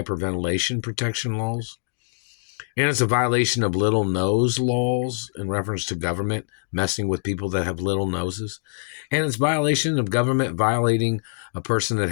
protection laws. And it's a violation of little nose laws in reference to government messing with people that have little noses. And it's violation of government violating a person that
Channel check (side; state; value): right; silent; digital silence